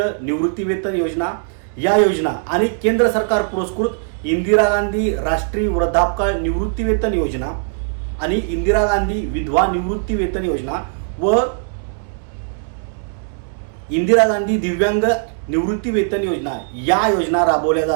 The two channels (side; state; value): left; silent; 66 dB below the other